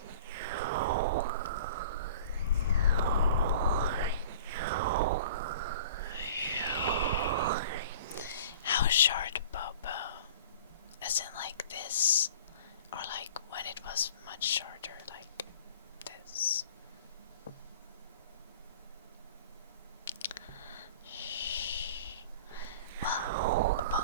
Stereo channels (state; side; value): inverted; both; correlation -0.44